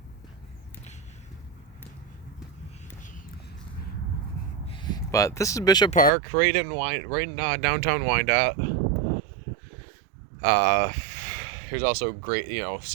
But this is Bishop Park, right in downtown Wyandotte. There's also great,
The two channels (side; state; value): left; drops out; at 6.1 s